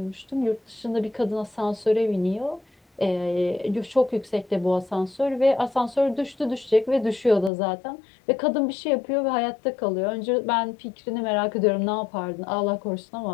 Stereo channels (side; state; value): right; drops out; at 7.5 s